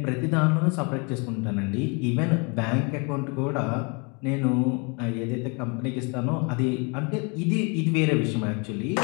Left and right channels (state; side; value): quieter; right; 32.6 dB